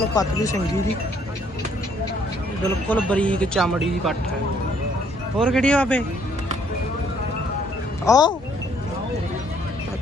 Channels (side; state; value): both; normal; correlation 0.65